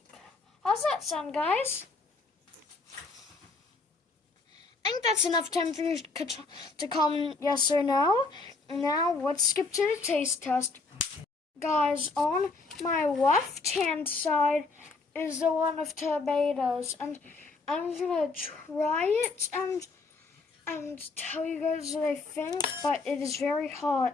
How's that sound, guys? I think that's enough time for you to comment yes or no. Now let's skip to the taste test. Guys, on my left-hand side is the one of tomatoes, and I'm gonna try it and tell you guys what I think, but it is very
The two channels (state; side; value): quieter; right; 3.9 dB